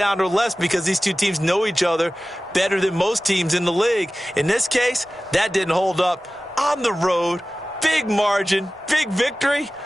or less because these two teams know each other better than most teams in the league. In this case, that didn't hold up. On the road, big margin, big victory.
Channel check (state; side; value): normal; both; correlation 0.96